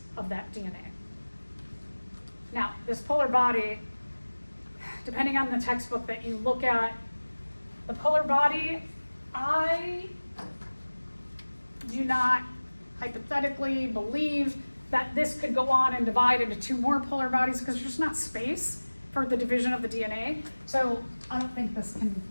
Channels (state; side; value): inverted; both; correlation -1.00